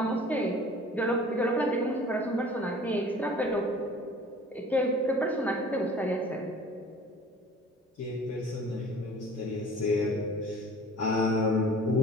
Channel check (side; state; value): both; normal; correlation 0.46